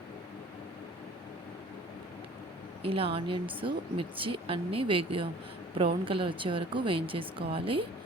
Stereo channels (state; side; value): normal; both; correlation 0.49